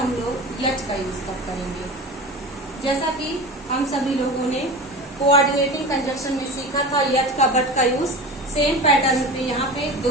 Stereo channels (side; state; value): both; normal; correlation 0.31